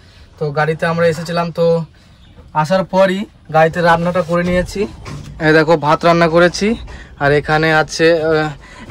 তো গাড়িতে আমরা এসেছিলাম, তো আসার পরই গাড়িতে রান্নাটা করে নিয়েছি। এই দেখো ভাত রান্না করেছি, আর এখানে আছে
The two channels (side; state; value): both; identical; correlation 1.00